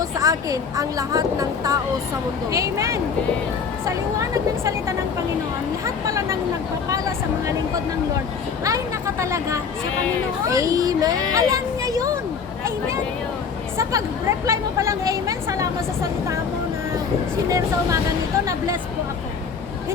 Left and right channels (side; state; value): right; quieter; 5.9 dB